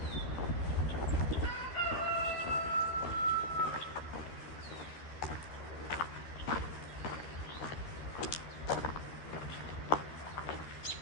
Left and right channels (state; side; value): late; right; 13 ms